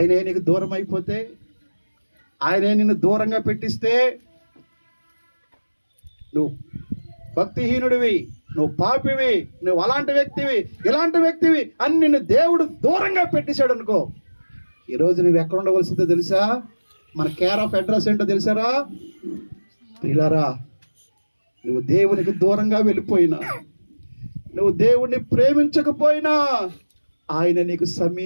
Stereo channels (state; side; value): inverted; both; correlation -1.00